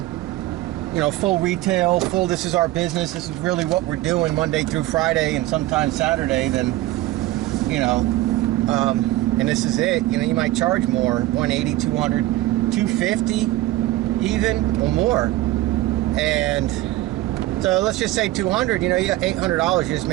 you know, full retail, full, this is our business, this is really what we're doing Monday through Friday and sometimes Saturday, then, you know, and this is it, you know, you might charge more, 180, 200, 250 even, or more. And so let's just say 200, you know, you got $800 you just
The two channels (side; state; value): left; quieter; 16.4 dB